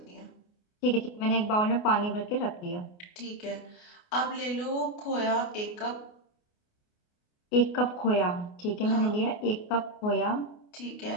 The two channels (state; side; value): late; right; 28 ms